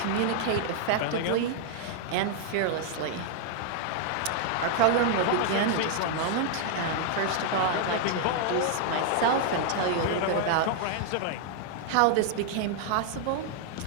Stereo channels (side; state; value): both; different; correlation -0.01